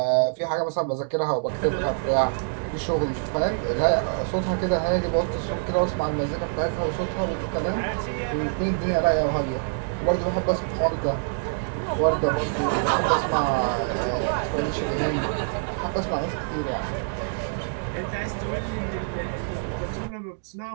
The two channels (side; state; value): left; silent; digital silence